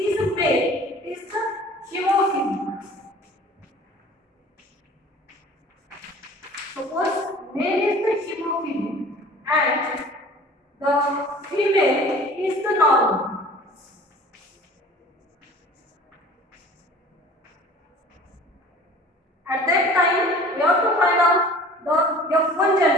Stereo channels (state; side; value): normal; both; correlation 0.46